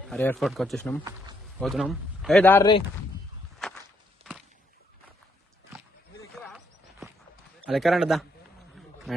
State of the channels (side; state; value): both; normal; correlation 0.74